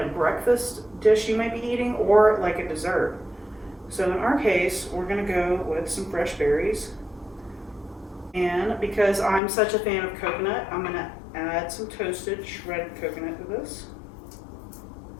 breakfast dish you might be eating, or like a dessert. So in our case, we're gonna go with some fresh berries. And because I'm such a fan of coconut, I'm gonna add some toasted shredded coconut to this.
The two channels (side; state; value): right; drops out; at 9.4 s